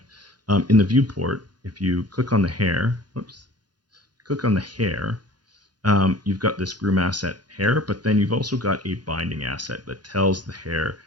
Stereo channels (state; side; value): late; left; 0.70 ms